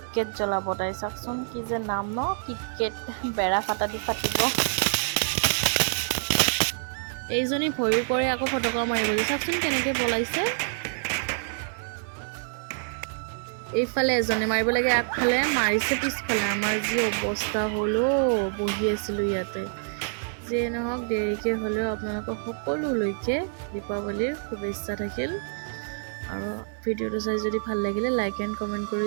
জ্বলাব তাই চাওকচোন কি যে নাম ন কিটকেট বেৰা ফাটা দি ফাটিব এইজনী ভয়ো কৰে আকৌ ফটকা মাৰিবলৈ চাওকচোন কেনেকৈ পলাইছে এইফালে এজনে মাৰিব লাগে আগফালে মাৰিছে পিছফালে আমাৰ যি অৱস্থা হ'লো বহি আছিলোঁ ইয়াতে যে নহওক দেৰিকৈ হ'লেও আপোনালোকক সকলোলৈকে দীপাৱলীৰ শুভেচ্ছা থাকিল আৰু ভিডিঅ'টো চাই যদি ভাল লাগিলে লাইক এণ্ড কমেণ্ট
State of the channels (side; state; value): left; silent; 60 dB below the other